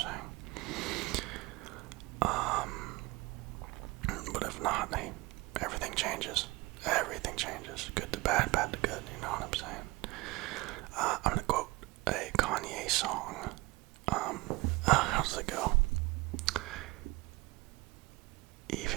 But if not, hey, everything changes. Everything changes. Good to bad, bad to good, you know what I'm saying? I'm gonna quote a Kanye song. How does it go?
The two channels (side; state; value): left; quieter; 21.9 dB